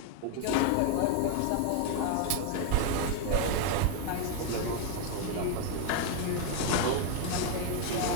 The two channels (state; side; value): different; both; correlation 0.01